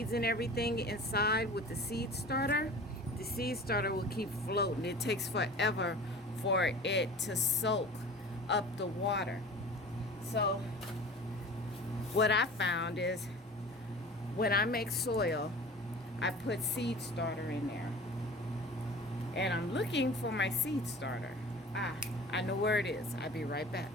and everything inside with the seed starter will keep floating. It takes forever for it to soak up the water. So what I found is when I make soil, I put seed starter in there. And I'm looking for my seed starter. I know where it is. I'll be right back.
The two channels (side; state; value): both; normal; correlation 0.40